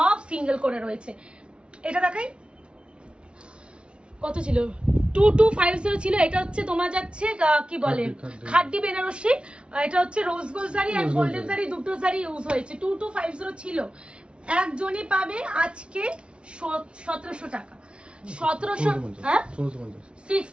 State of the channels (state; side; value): late; left; 0.057 ms